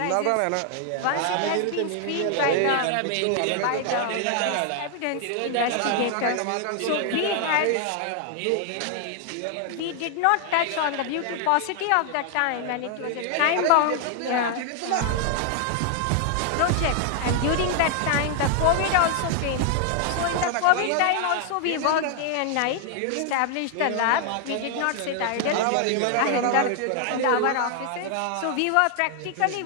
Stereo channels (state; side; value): different; both; correlation 0.00